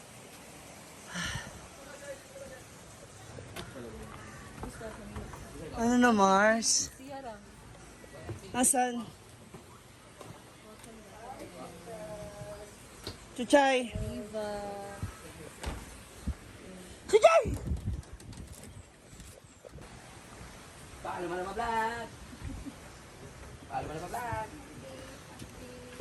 Ano na, Mars? Asan? Chuchay! Chuchay! Paano mo na ma-vlog? Paano mo na ma-vlog?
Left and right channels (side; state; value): both; identical; correlation 1.00